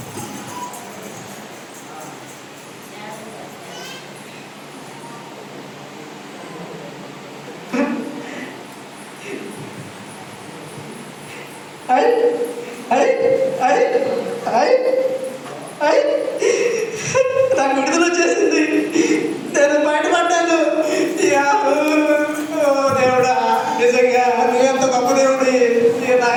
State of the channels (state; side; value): identical; both; correlation 1.00